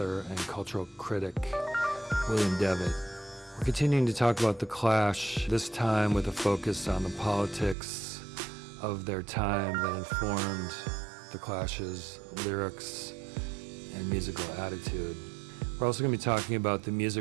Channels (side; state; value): left; drops out; at 7.8 s